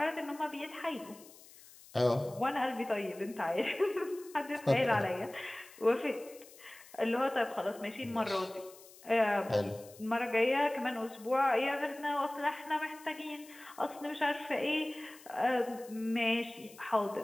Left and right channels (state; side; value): noise; left; hiss, 21 dB below the sound